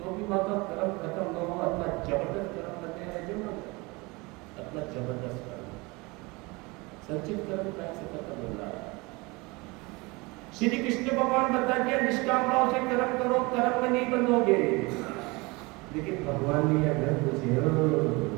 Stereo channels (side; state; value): left; quieter; 25.3 dB